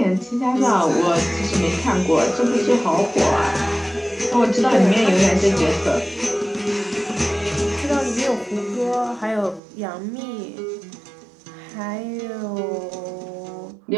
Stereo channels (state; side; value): drops out; left; at 9.6 s